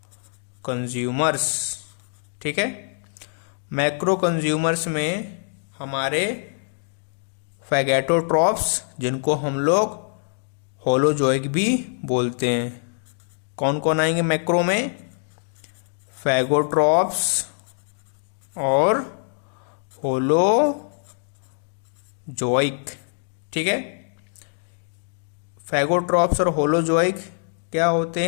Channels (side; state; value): right; silent; digital silence